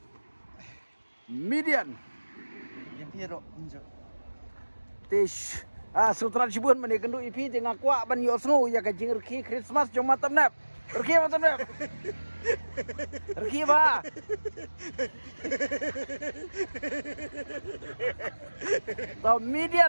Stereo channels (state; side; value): inverted; both; correlation -1.00